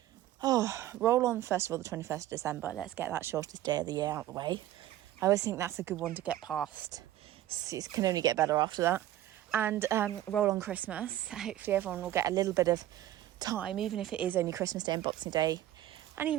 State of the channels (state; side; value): quieter; left; 13.6 dB